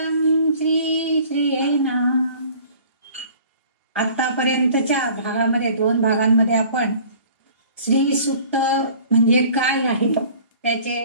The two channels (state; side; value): inverted; both; correlation -0.49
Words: श्री श्रियै नमः। आतापर्यंतच्या भागामध्ये 2 भागांमध्ये आपण श्री सूक्त म्हणजे काय आहे त्याचे